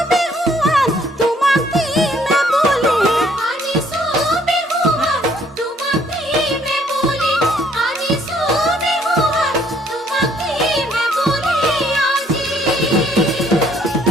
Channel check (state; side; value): normal; both; correlation 0.64